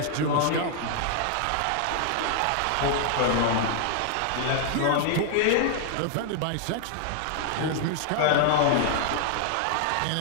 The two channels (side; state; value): both; different; correlation 0.00